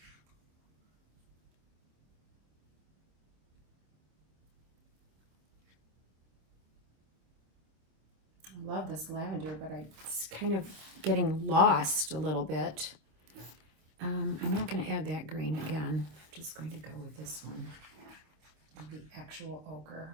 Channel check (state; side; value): late; left; 26 ms